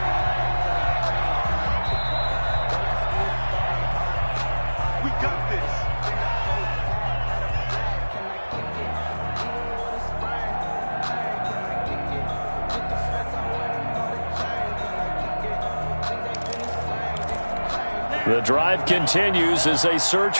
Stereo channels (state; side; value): inverted; both; correlation -1.00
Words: We got this. The drive continues as they search